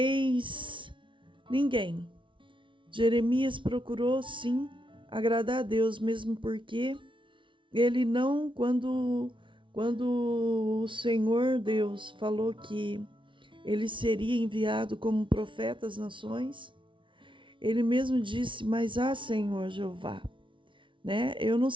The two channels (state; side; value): late; left; 0.24 ms